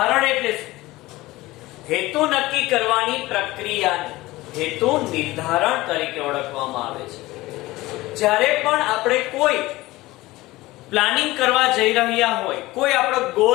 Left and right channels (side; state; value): right; quieter; 19.0 dB